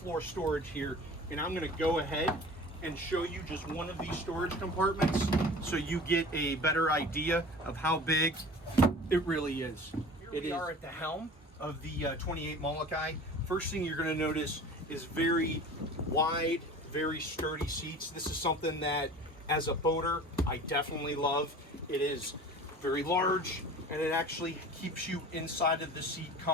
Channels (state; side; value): normal; both; correlation 0.41